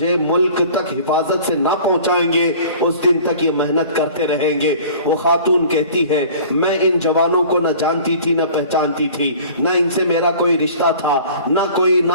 ملک تک حفاظت سے نہ پہنچائیں گے اس دن تک یہ محنت کرتے رہیں گے۔ وہ خاتون کہتی ہے میں ان جوانوں کو نہ جانتی تھی نہ پہچانتی تھی، نہ ان سے میرا کوئی رشتہ تھا نہ کوئی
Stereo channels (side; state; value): both; inverted; correlation -0.45